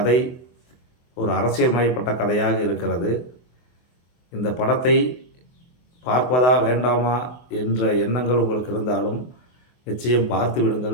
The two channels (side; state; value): right; late; 24 ms